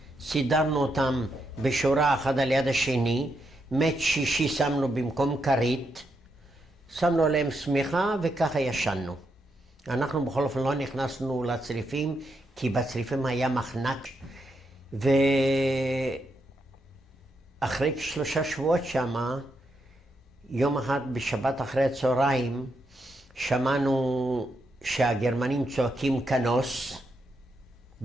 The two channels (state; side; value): normal; both; correlation 0.81